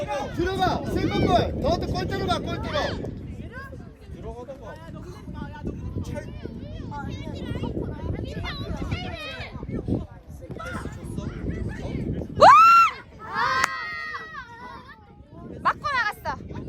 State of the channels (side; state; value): both; identical; correlation 1.00